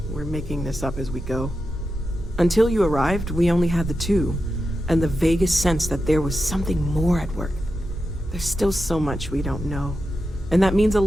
we're making this up as we go. Until you arrived, we only had the two, and the vaguest sense that there was something more at work. There's still so much we don't know, and that means a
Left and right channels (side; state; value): both; normal; correlation 0.89